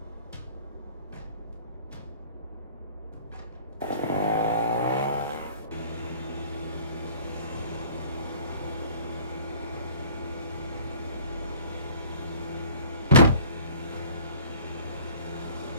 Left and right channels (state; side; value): inverted; both; correlation -0.50